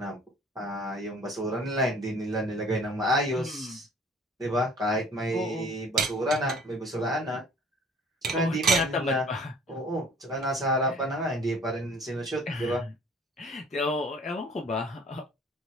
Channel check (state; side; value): normal; both; correlation 0.51